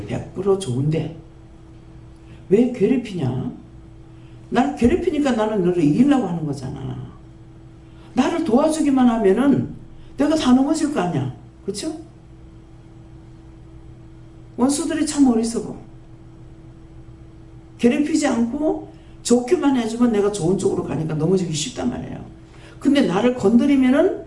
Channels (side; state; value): both; identical; correlation 1.00